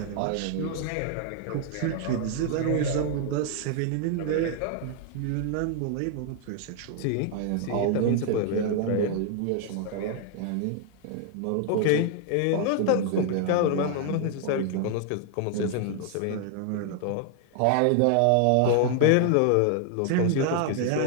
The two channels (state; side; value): different; both; correlation 0.00